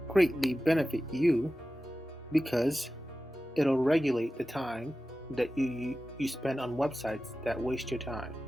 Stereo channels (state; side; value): normal; both; correlation 0.94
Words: greatly benefit you because it'll regulate the time that you spend on websites that waste your time.